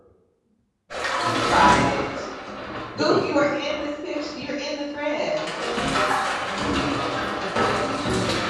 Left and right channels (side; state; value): both; identical; correlation 1.00